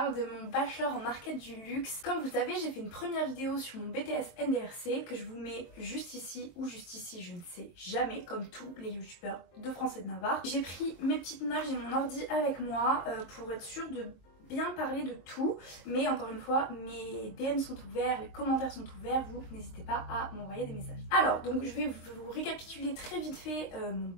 de mon bachelor en market du luxe. Comme vous le savez, j'ai fait une première vidéo sur mon BTS NDRC que je vous mets juste ici ou juste ici, je ne sais jamais, comme tous les youtubeurs de France et de Navarre. J'ai pris mes petites notes, j'ai mon ordi avec moi pour être sûre de bien parler de tout, mais encore une fois mes DM sont ouverts, les commentaires sont ouverts, vous n'hésitez pas à m'envoyer des messages. Alors donc je vais vous récapituler très vite fait mon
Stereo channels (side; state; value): right; late; 23 ms